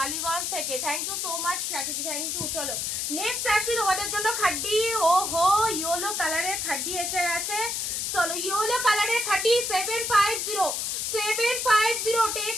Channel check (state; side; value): noise; left; hiss, 1 dB below the sound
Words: থেকে, থ্যাংক ইউ সো মাচ স্বাতীদি, থ্যাংক ইউ। চলো নেক্সট আসি তোমাদের জন্য খাড্ডি, ও হো ইয়েলো কালারের খাড্ডি এসে গেছে। চলো ইয়েলো কালারের খাড্ডি 750